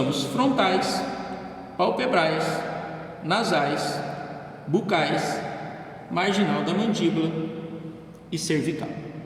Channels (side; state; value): both; identical; correlation 1.00